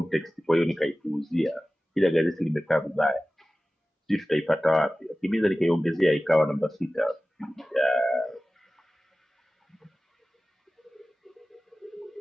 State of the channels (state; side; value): normal; both; correlation 0.97